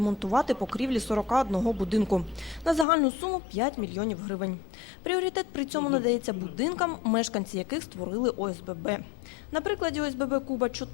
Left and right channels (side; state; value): right; drops out; at 2.9 s